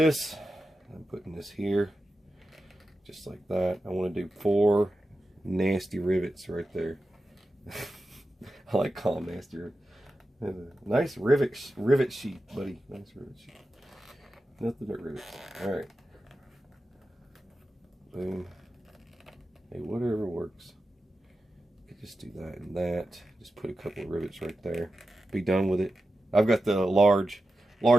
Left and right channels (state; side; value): normal; both; correlation 0.92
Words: putting this here, just like that. I want to do 4 nasty rivets right there. I like calling them nasty rivets. Nice rivet sheet, buddy. Nice rivet sheet. Nothing but rivets. Alright. Boom. Hey, whatever works. You could just do that and that. Just put a couple of rivets right there. Be done with it. I've got the large